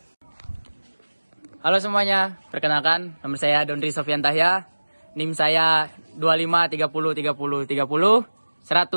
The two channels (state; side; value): inverted; both; correlation -1.00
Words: Halo semuanya, perkenalkan nama saya Dondri Sofian Tahya, NIM saya 25 30 30 30